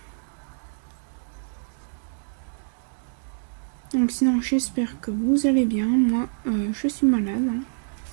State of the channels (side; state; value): left; silent; digital silence